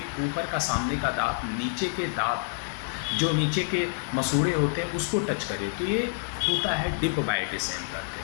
ऊपर का सामने का दांत नीचे के दांत जो नीचे के मसूड़े होते हैं उसको टच करे, तो ये होता है डिप बाइट, इसे हम कहते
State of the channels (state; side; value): silent; right; 58 dB below the other